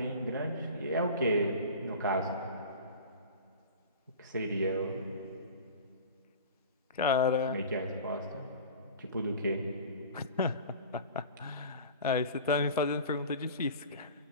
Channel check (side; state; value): both; inverted; correlation -0.38